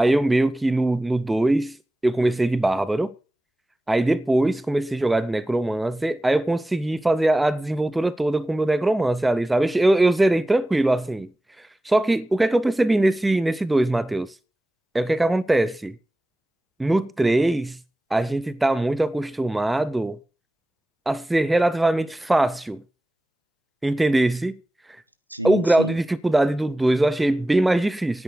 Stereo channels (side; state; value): both; normal; correlation 0.96